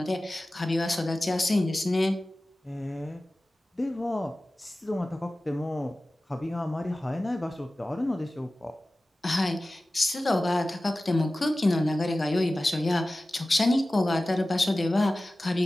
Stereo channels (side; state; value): both; normal; correlation 0.96